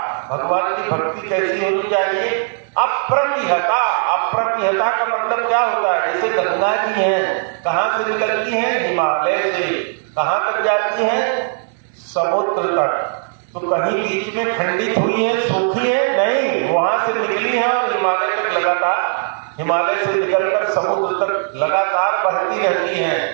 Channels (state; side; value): silent; left; 59 dB below the other